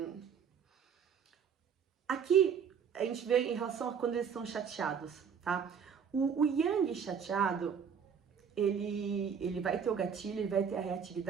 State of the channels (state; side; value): quieter; left; 7.1 dB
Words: Aqui a gente vê em relação a quando eles estão chateados, tá? O yang chateado, ele vai ter o gatilho, ele vai ter a